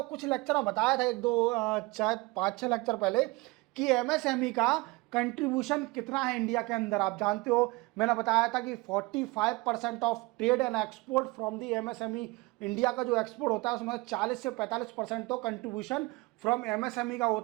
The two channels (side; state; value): left; quieter; 23.6 dB